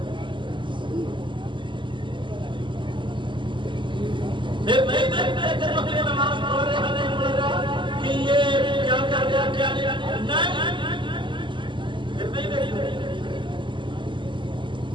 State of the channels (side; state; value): left; late; 0.24 ms